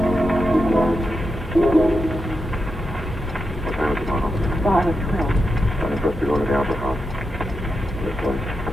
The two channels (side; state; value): both; normal; correlation 0.87